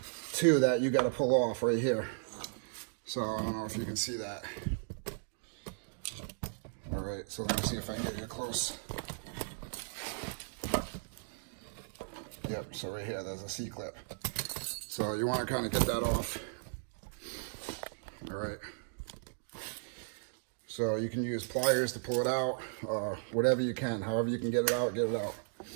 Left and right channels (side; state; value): left; silent; digital silence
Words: too that you got to pull off right here. So I don't know if you can see that. All right, so let me see if I can get you close. Yep, so right here, there's a C-clip. So you want to kind of get that off. All right. So you can use pliers to pull it out, whatever you can, however you can get it out, get it out.